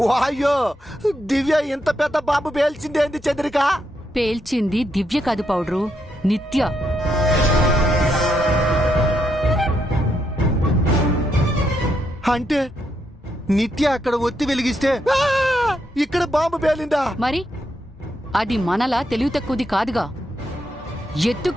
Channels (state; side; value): normal; both; correlation 0.79